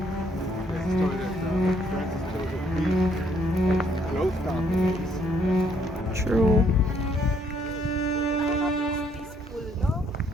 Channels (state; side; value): normal; both; correlation 0.68